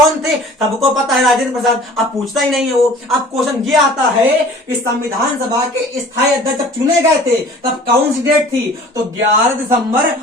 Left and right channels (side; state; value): both; normal; correlation 0.47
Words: थे, सबको पता है राजेंद्र प्रसाद। अब पूछता ही नहीं है वो। अब क्वेश्चन ये आता है कि संविधान सभा के स्थायी अध्यक्ष चुने गए थे तब कौन सी डेट थी तो 11 दिसंबर